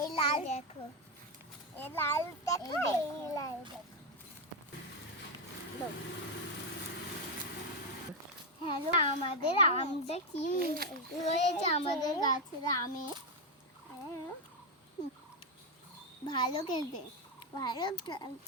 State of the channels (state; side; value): normal; both; correlation 0.05